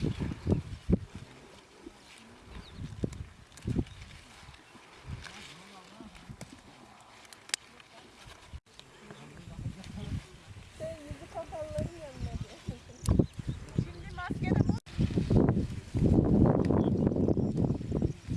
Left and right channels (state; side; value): identical; both; correlation 1.00